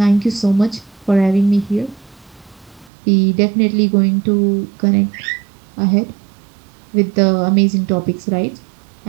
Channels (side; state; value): left; drops out; at 2.9 s